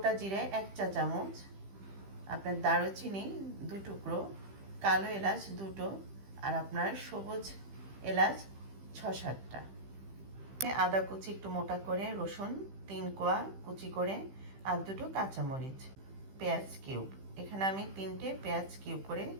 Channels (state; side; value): late; left; 15 ms